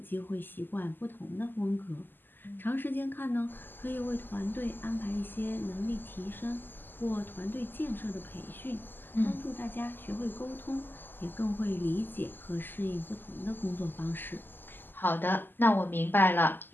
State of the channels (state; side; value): late; right; 0.092 ms